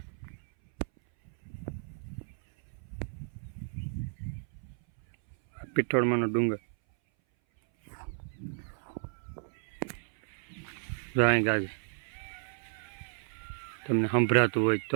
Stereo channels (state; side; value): silent; left; 56 dB below the other